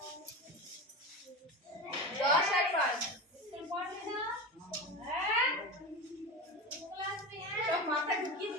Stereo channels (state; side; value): normal; both; correlation 0.24